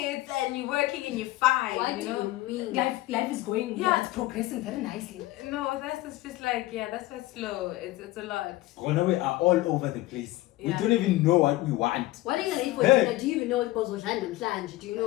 and you're working and you're fine? What do you mean? Life is going. Yeah. It's progressing very nicely. No, that's just like that's why it's slow. It's a lot. We are all over the place. We don't even know what we want. What are you gonna eat for dinner? Do you even know what was and flange? Do you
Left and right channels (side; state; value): right; quieter; 17.9 dB